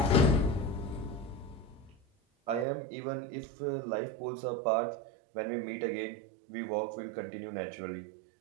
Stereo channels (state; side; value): drops out; left; at 2.7 s